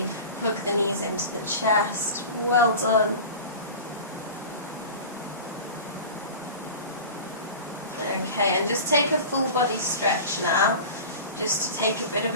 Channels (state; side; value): inverted; both; correlation -0.34